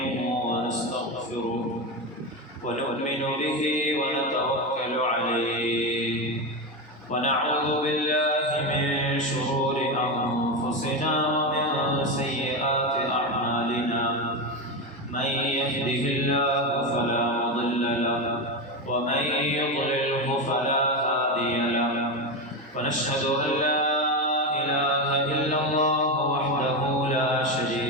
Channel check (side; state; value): both; normal; correlation 0.14